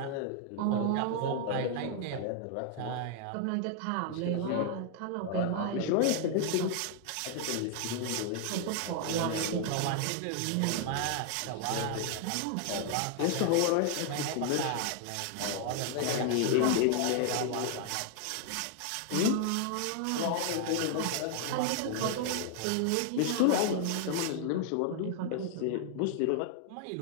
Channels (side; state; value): both; different; correlation 0.00